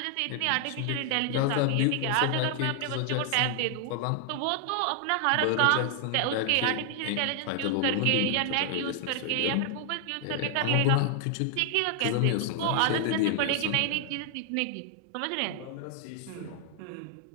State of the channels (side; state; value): both; different; correlation 0.00